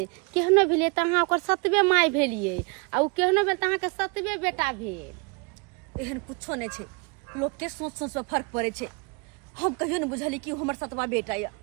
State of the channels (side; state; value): left; quieter; 31.4 dB